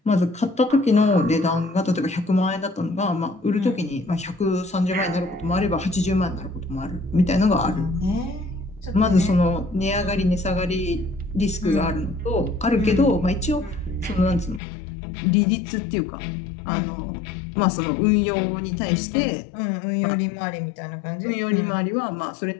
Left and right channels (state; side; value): drops out; right; at 14.6 s